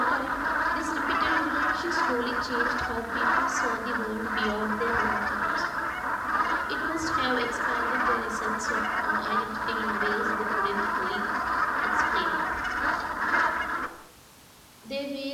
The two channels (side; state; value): both; identical; correlation 1.00